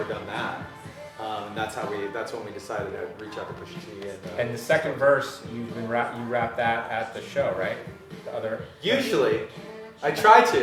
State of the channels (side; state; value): both; identical; correlation 1.00